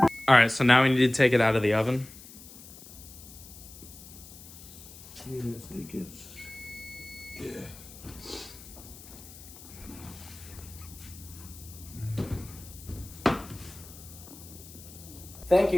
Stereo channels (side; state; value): left; noise; hiss, 17 dB below the sound